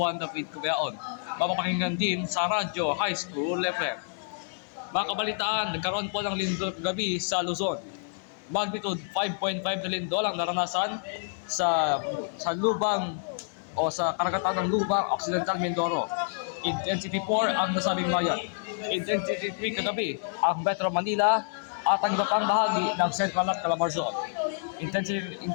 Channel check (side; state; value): right; silent; 59 dB below the other